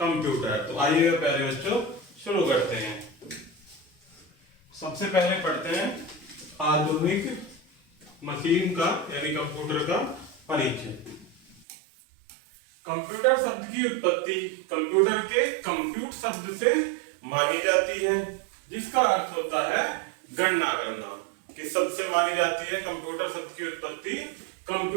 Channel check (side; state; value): left; drops out; at 11.7 s